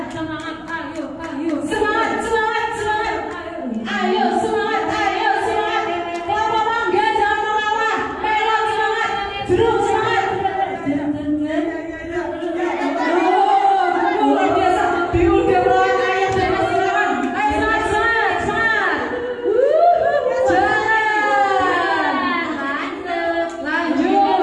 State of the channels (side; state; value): both; identical; correlation 1.00